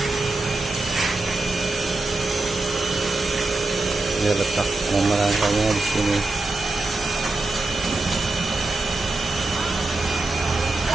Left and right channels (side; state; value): left; quieter; 3.2 dB